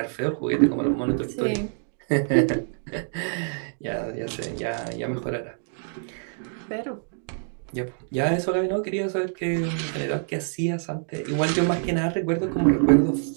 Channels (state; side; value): silent; left; 61 dB below the other